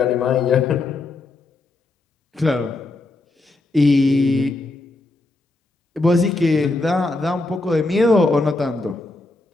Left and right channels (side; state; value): right; quieter; 3.1 dB